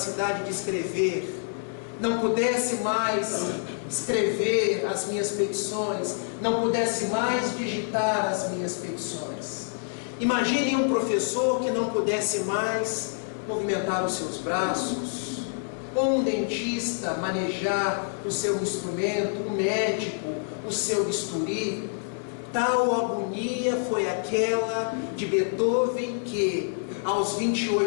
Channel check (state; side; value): silent; right; 60 dB below the other